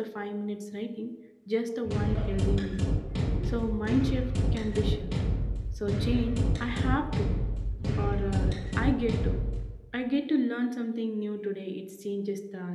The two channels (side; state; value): both; identical; correlation 1.00